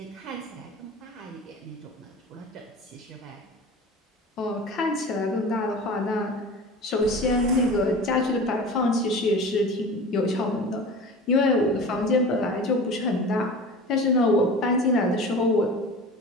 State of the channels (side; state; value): both; normal; correlation 0.36